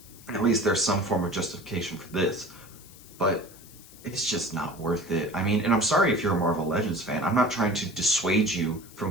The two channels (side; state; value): left; noise; hiss, 21 dB below the sound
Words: at least there's some form of justification for this. But it's just not worth it. I mean, and I'm sorry if you're a Marvel Legends fan. I'm not trying to dissuade you